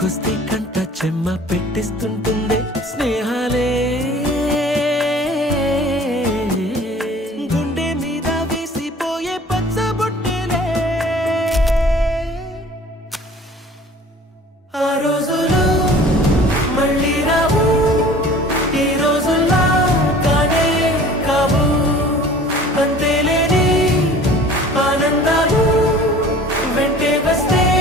కంట చెమ్మ పెట్టిస్తుంటుందే స్నేహాలే. గుండె మీద వేసిపోయే పచ్చబొట్టెలే. ఆ రోజులు మళ్ళీ రావు, ఈ రోజుల్లా కానే కావు. అంతేలేని ఆనందాలు వెంటే వస్తే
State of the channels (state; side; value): normal; both; correlation 0.47